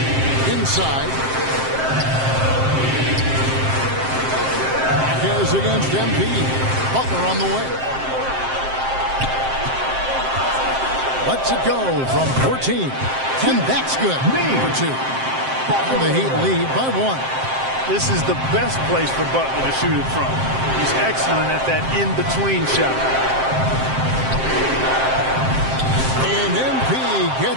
Inside. Marquez against Embiid. Butler on the way. Lets it go from 14. And that's good. For 2. And the Heat lead by 1. This is the best place for Butler to shoot it from. He's excellent at that in-between shot. And MP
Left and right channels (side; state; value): left; late; 7.6 ms